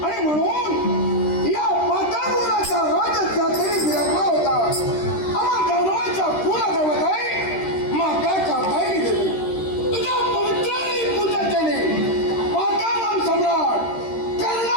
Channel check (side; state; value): right; late; 13 ms